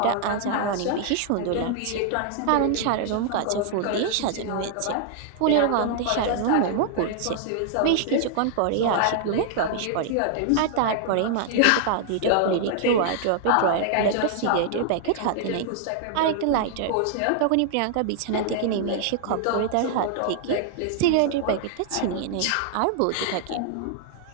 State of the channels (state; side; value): different; both; correlation -0.01